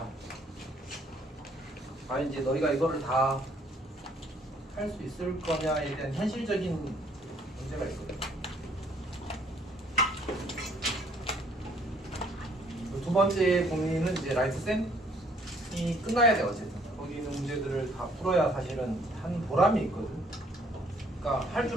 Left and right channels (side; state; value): both; normal; correlation 0.62